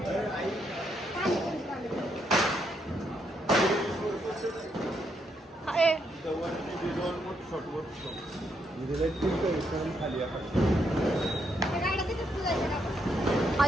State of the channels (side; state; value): both; normal; correlation 0.77